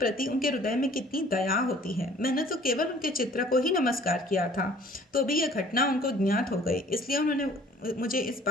उनके हृदय में कितनी दया होती है। मैंने तो केवल उनके चित्र को ही नमस्कार किया था, तो भी यह घटना उनको ज्ञात हो गई। इसलिए उन्होंने मुझे इस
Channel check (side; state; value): both; normal; correlation 0.53